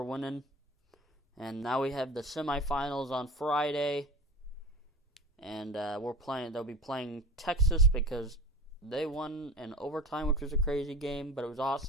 winning. And now we have the semifinals on Friday. And they'll be playing Texas because they won in overtime, which was a crazy game, but it was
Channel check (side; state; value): both; normal; correlation 0.36